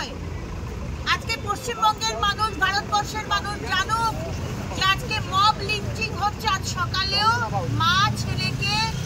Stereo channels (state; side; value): identical; both; correlation 1.00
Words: আজকে পশ্চিমবঙ্গের মানুষ, ভারতবর্ষের মানুষ জানুক যে আজকে মব লিঞ্চিং হচ্ছে। আজ সকালেও মা ছেলেকে